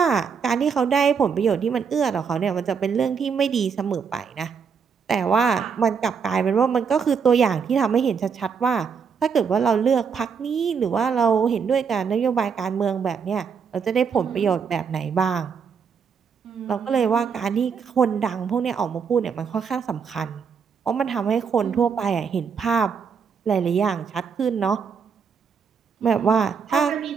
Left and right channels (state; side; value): quieter; left; 6.3 dB